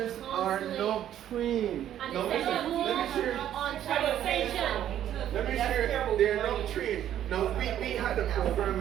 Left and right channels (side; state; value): left; quieter; 11.1 dB